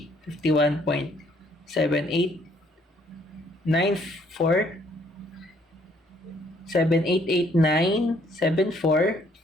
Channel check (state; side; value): normal; both; correlation 0.65